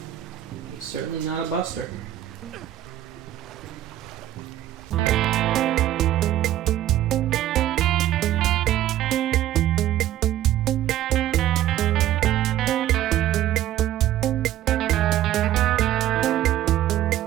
He's certainly not a buster.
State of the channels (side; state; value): left; quieter; 13.0 dB